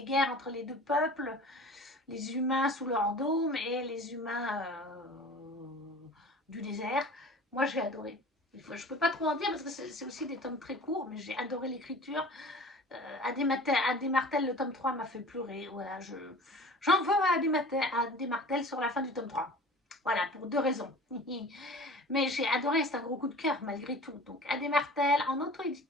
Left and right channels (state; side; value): normal; both; correlation 0.41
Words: entre les deux peuples, les humains sous leur dôme et les humains du désert. Moi, j'ai adoré. Je ne peux pas trop en dire parce que c'est aussi des tomes très courts, mais j'ai adoré l'écriture. Adé Martel, le tome 3 m'a fait pleurer. Voilà, j'en veux à Adé Martel sur la fin du tome 3. Voilà, pour 2 raisons. Mais j'ai adoré, c'est un gros coup de cœur malgré tout. Donc Adé Martel en